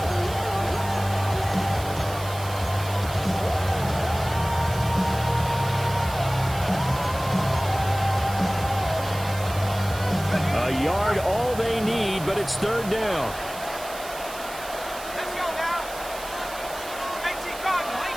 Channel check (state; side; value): noise; right; hiss, 14 dB below the sound